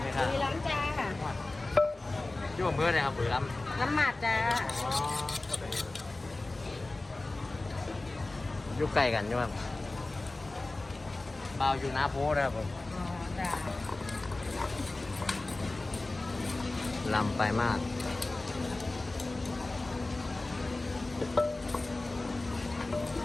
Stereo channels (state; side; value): quieter; right; 3.0 dB